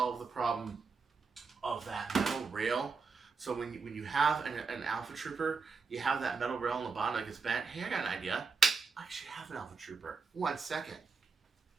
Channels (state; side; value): quieter; left; 4.9 dB